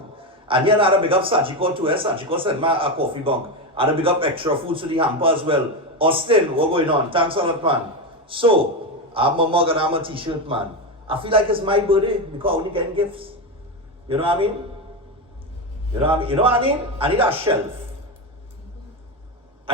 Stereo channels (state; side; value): normal; both; correlation 0.14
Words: And here I had a big up Sachiko too. Sachiko sent me a coffee bunk. I had a big up extra food to the hamper as well. Austin, what's going on? Thanks a lot, man. So, I'm a mug and I'm a t-shirt, man. I feel like it's my birthday because I only getting gifts. You know what I mean? You know what I mean? I need a